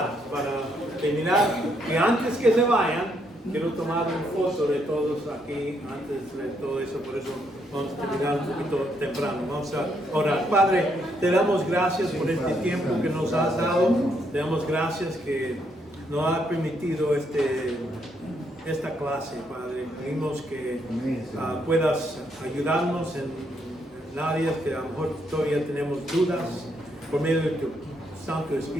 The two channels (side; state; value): both; normal; correlation 0.75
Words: para terminar. Y antes que se vayan, quiero tomar una foto de todos aquí, antes de todo eso, por eso vamos a terminar un poquito temprano. Vamos a orar. Padre, te damos gracias por este tiempo que nos has dado. Te damos gracias que nos has permitido esta clase, Padre. Pedimos que puedas ayudarnos en áreas que a lo mejor todavía tenemos dudas. Por medio de tu Santo